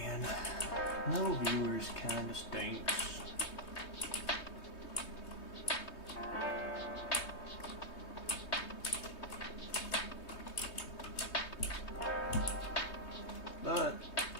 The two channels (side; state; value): right; late; 3.2 ms